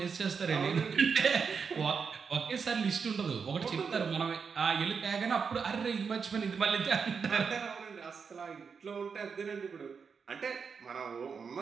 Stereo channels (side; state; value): left; quieter; 5.8 dB